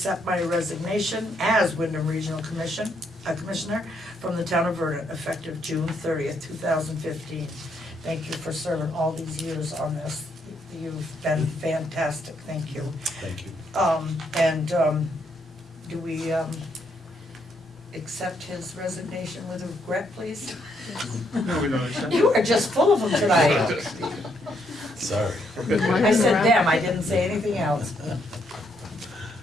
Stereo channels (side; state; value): both; normal; correlation 0.74